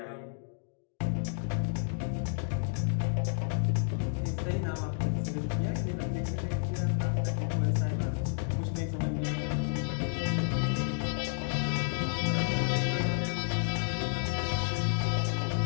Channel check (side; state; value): right; silent; digital silence